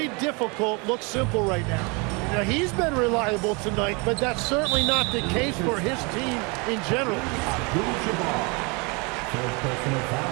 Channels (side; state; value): left; quieter; 30.0 dB